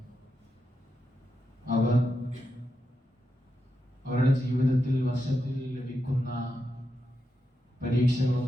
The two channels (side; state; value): both; normal; correlation 0.86